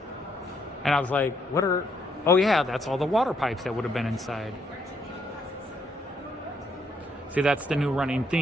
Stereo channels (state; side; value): normal; both; correlation 0.73